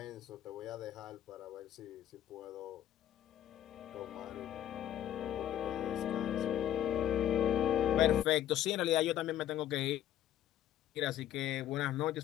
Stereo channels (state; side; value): quieter; right; 11.6 dB